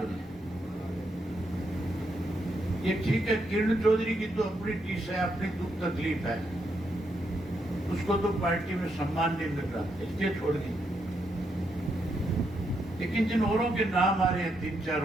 हैं? ये ठीक है, किरण चौधरी की तो अपनी टीस है, अपनी दुख तकलीफ है, उसको तो पार्टी में सम्मान नहीं मिल रहा, इसलिए छोड़ दी। लेकिन जिन औरों के नाम आ रहे हैं,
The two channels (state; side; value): normal; both; correlation 0.79